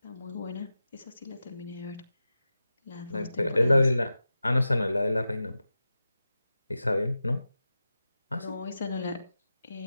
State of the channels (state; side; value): inverted; both; correlation -0.93